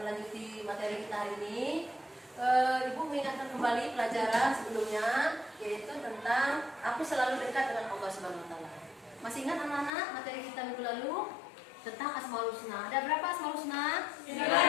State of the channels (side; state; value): right; drops out; at 9.9 s